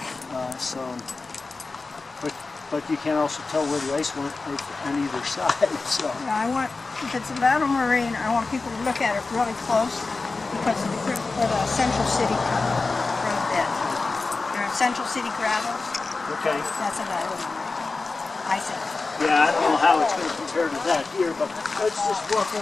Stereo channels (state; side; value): quieter; right; 3.8 dB